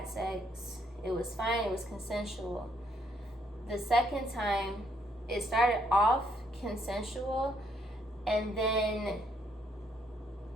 sex, it was fine, it was consensual. The second time, it started off consensual, and then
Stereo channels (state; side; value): normal; both; correlation 0.71